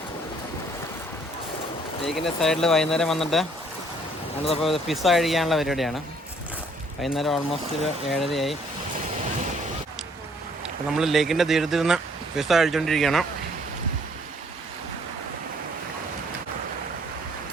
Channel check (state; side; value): normal; both; correlation 0.62